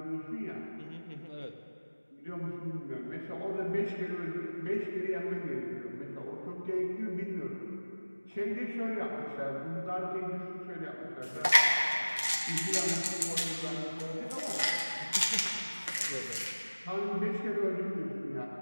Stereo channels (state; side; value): inverted; both; correlation -1.00